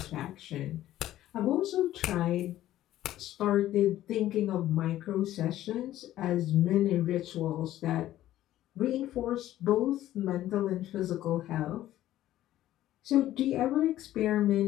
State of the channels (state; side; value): quieter; right; 13.7 dB